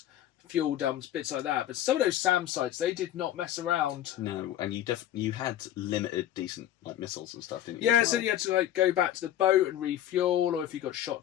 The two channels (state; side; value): quieter; right; 12.0 dB